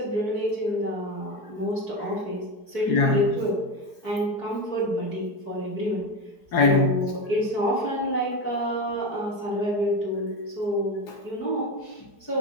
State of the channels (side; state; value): right; late; 4.8 ms